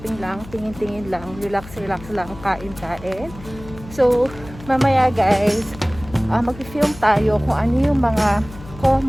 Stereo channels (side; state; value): left; noise; hum, 16 dB below the sound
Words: lang, tingin-tingin lang, relax-relax lang, kain-kain. So mamaya guys, mag-film tayo kung ano yung mga